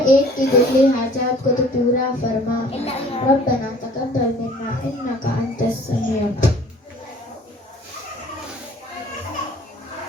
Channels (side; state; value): both; normal; correlation 0.51